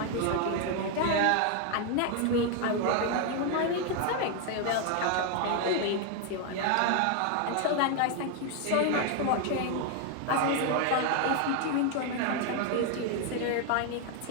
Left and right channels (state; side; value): different; both; correlation 0.01